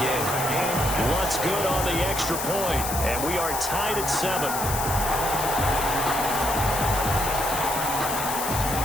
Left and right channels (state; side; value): noise; left; hiss, 4 dB below the sound